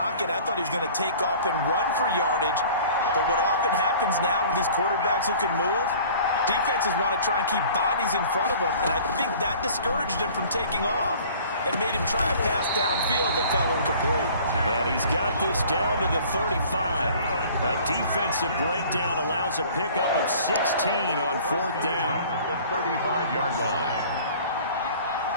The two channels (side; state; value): both; inverted; correlation -0.48